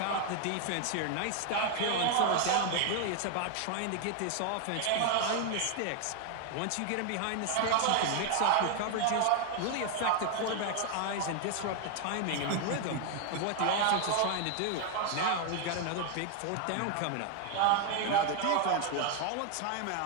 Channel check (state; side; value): different; both; correlation 0.00